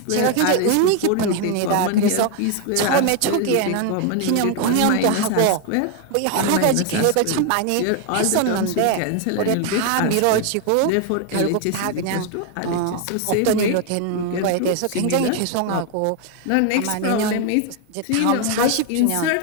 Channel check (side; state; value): both; different; correlation 0.01